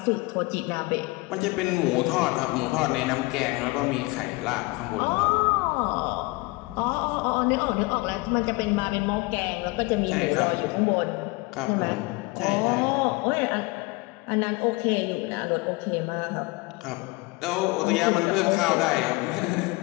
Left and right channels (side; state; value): right; quieter; 24.3 dB